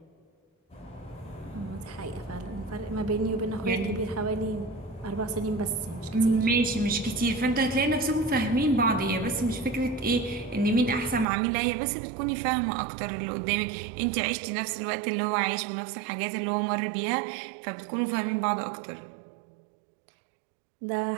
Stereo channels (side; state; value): left; drops out; at 11.2 s